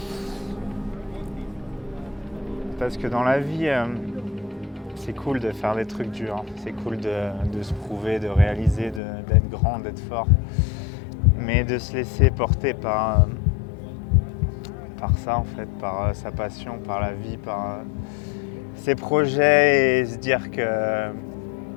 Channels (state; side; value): drops out; right; at 9.0 s